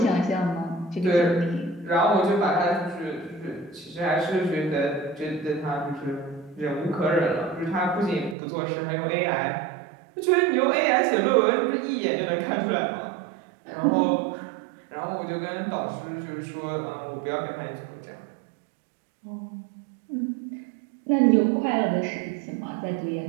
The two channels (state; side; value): drops out; left; at 8.3 s